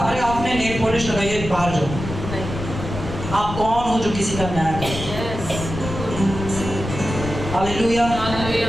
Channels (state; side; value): noise; left; rumble, 7 dB below the sound